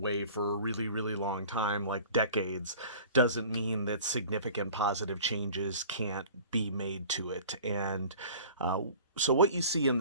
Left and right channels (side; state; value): both; inverted; correlation -0.44